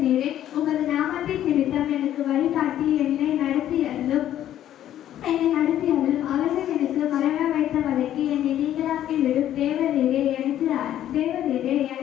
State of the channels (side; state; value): right; quieter; 11.7 dB